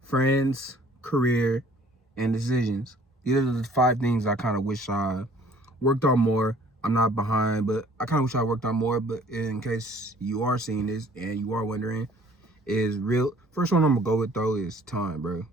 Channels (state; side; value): normal; both; correlation 0.55